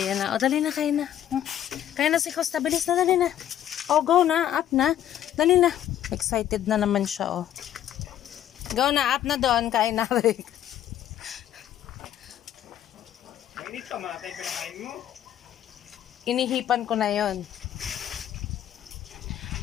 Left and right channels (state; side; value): quieter; right; 11.2 dB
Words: na. O, dali na. Kain na. Kaya na si Costa. Bilis na. Dali na. O, go na. Up na. Dali na. Excited na naman siya, oh. Go na. Up na doon. Kain na, Rick. Mainit ka, matay pinakain mo. Inihipan ko na yon.